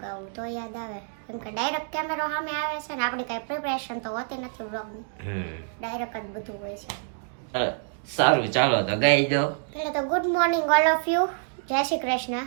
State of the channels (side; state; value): left; silent; digital silence